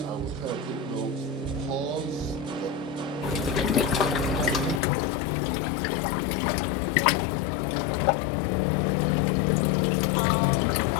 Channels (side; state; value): right; drops out; at 4.8 s